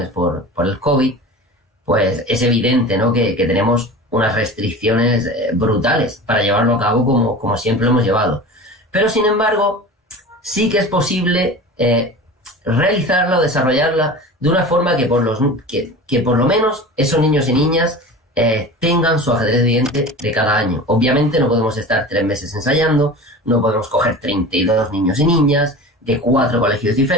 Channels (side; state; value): both; normal; correlation 0.34